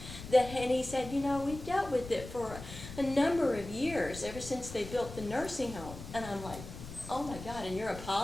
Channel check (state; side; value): noise; left; rumble, 12 dB below the sound